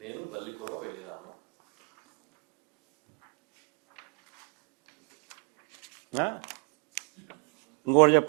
నేను బల్లికురవ వెళ్ళినాను. ఇంకోటి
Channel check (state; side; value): quieter; left; 37.4 dB